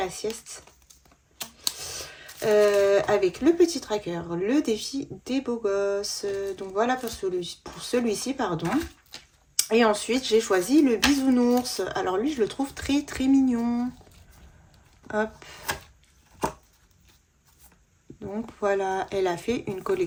sieste. Avec le petit tracker, le défi des beaux gosses. Donc voilà pour celui-ci, pardon. Et ensuite, j'ai choisi le bisounours. Alors lui, je le trouve très très mignon. Hop. Donc voilà, elle a fait une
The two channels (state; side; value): identical; both; correlation 1.00